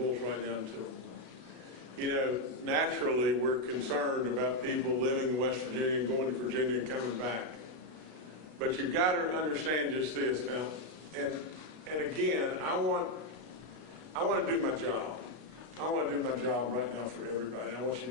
right down to it. You know, naturally, we're concerned about people living in West Virginia and going to Virginia and coming back. But you've got to understand just this now, and again, I want to do my job. I want to do my job right now for everybody. I want you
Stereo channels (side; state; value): left; late; 33 ms